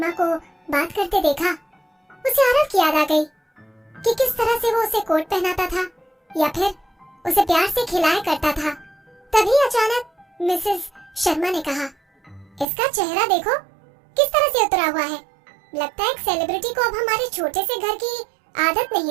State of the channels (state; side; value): drops out; left; at 12.7 s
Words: को बात करते देखा, उसे आरव की याद आ गई कि किस तरह से वो उसे कोट पहनाता था या फिर उसे प्यार से खिलाया करता था। तभी अचानक मिसेस शर्मा ने कहा, इसका चेहरा देखो किस तरह से उतरा हुआ है। लगता है एक सेलिब्रिटी को अब हमारे छोटे से घर की आदत